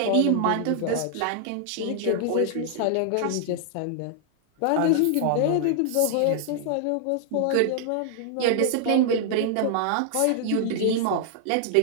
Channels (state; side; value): different; both; correlation 0.00